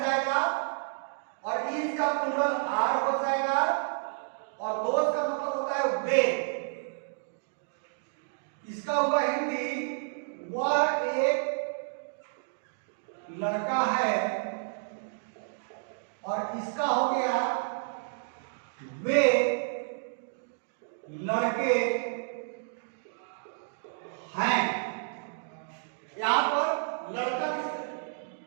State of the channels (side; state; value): left; silent; digital silence